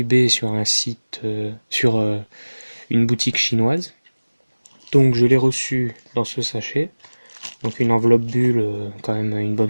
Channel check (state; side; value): inverted; both; correlation -1.00